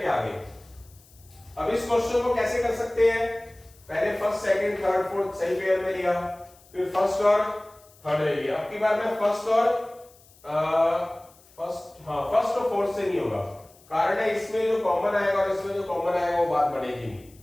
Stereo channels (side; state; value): left; noise; hiss, 27 dB below the sound